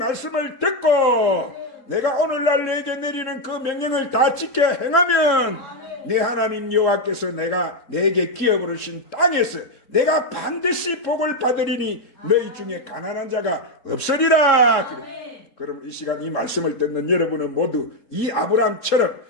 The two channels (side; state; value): right; late; 3.6 ms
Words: 듣고 내가 오늘날 내게 내리는 그 명령을 다 지켜 행하면 내 하나님 여호와께서 내게 기업으로 주신 땅에서 내가 반드시 복을 받으리니 너희 중에 가난한 자가 없으리라. 그럼 이 시간 이 말씀을 듣는 여러분은 모두 이 아브라함처럼